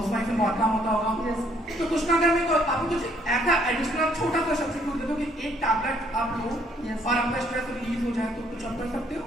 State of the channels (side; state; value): both; normal; correlation 0.66